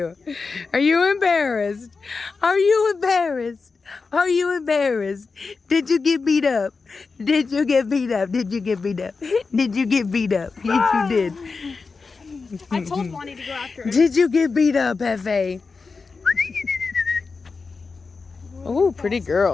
Are you embarrassed? Are you embarrassed? Are you embarrassed? Did you get beat up? Did you get beat up? Did you get beat up? Did you get beat up? Yes, you did. I told Bonnie to go after her. Did you get beat up, Hefe? Oh, pretty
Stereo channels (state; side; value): quieter; right; 4.5 dB